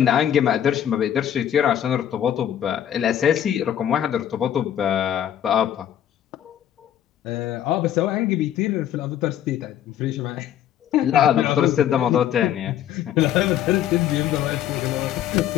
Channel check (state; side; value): quieter; right; 10.6 dB